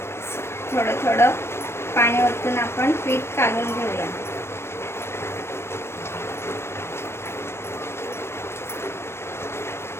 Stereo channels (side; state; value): right; late; 0.12 ms